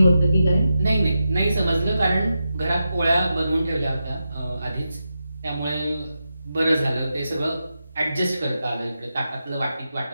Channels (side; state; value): both; inverted; correlation -0.89